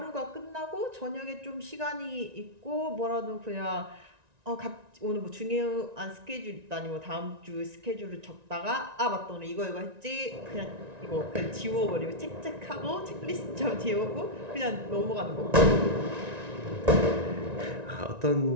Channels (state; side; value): late; left; 1.9 ms